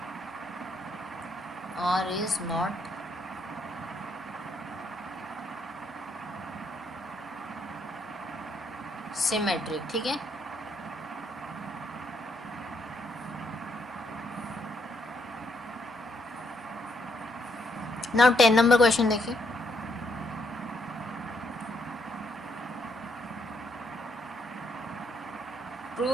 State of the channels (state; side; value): normal; both; correlation 0.73